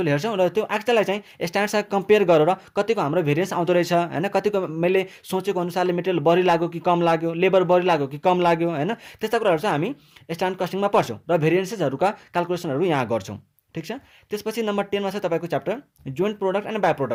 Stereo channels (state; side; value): identical; both; correlation 1.00